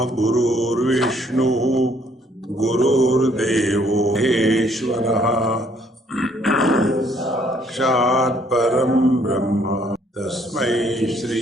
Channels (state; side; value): normal; both; correlation 0.65